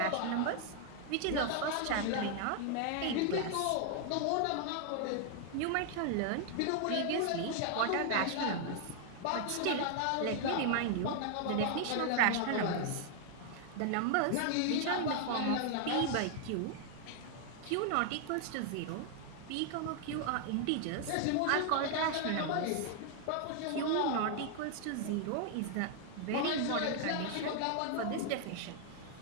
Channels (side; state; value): both; different; correlation 0.00